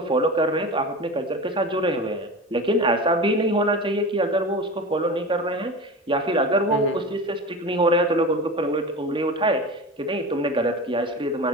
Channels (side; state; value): both; normal; correlation 0.30